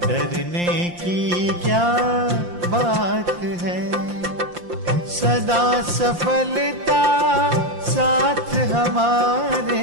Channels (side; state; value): left; late; 5.7 ms